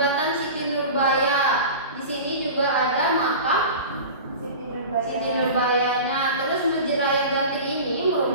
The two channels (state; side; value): inverted; both; correlation -0.34